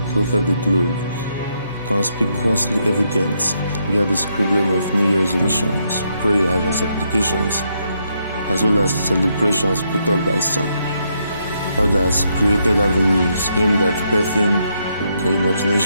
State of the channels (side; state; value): both; inverted; correlation -0.77